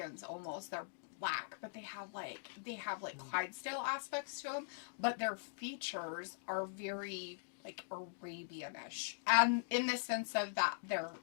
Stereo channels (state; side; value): silent; right; digital silence